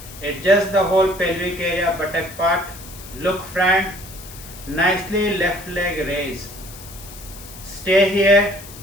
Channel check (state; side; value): noise; left; hiss, 16 dB below the sound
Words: Adjust the whole pelvic area, buttock part. Look front. Nicely left leg raise. Stay here.